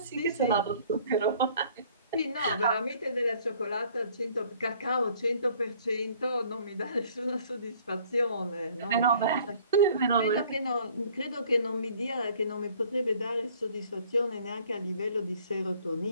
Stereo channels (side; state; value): both; inverted; correlation -0.57